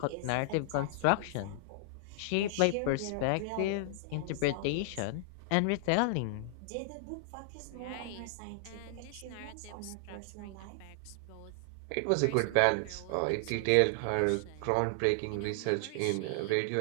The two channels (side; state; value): both; different; correlation 0.00